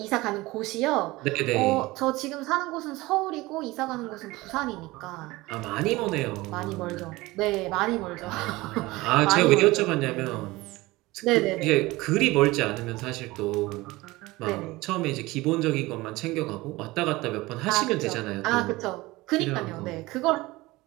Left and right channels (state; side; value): quieter; left; 20.4 dB